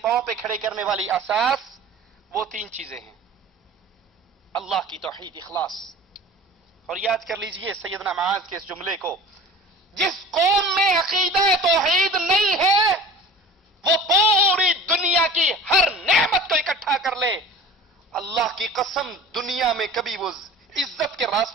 پہ کھڑے کرنے والی اساس وہ 3 چیزیں ہیں. اللہ کی توحید، اخلاص. اور یاد کر لیجئے سیدنا معاذ کے اس جملے کو، جس قوم میں عقیدہ توحید نہیں ہے وہ پوری دنیا کی ہر نعمت کو اکٹھا کر لے، اللہ کی قسم دنیا میں کبھی وہ عزت کے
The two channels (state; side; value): normal; both; correlation 0.40